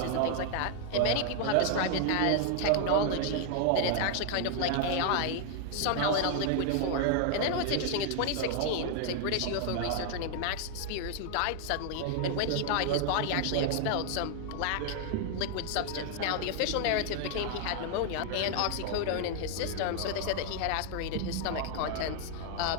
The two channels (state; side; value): different; both; correlation 0.00